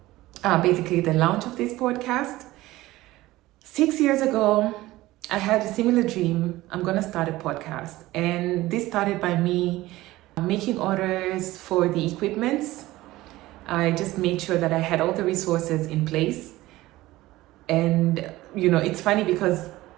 basically the launch of this podcast. 6 years ago, I had a similar dream. I'm going to start a podcast. And this started by me making orders for the equipments. I just made sure that I had all the resources in place. And, it's funny because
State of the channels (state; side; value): quieter; left; 17.6 dB